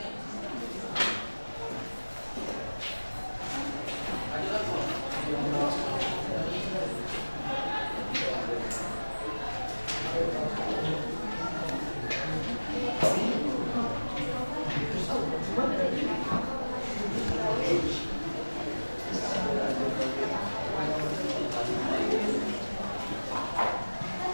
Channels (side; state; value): both; inverted; correlation -1.00